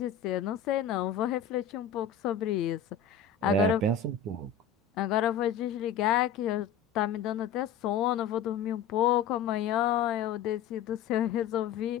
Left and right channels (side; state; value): right; quieter; 7.4 dB